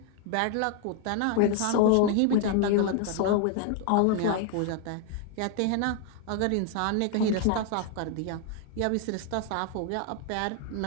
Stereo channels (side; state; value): both; different; correlation 0.01